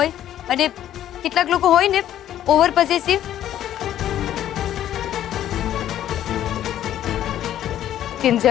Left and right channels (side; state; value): right; quieter; 11.7 dB